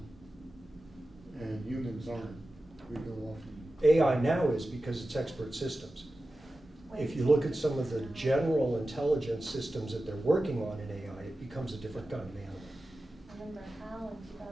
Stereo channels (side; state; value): both; normal; correlation 0.94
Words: and humans aren't. We go off and AI now is because it's expert systems. If you look at some of the general intelligence systems that they're working on in AI, it becomes a different kind of animal. Remember Hal in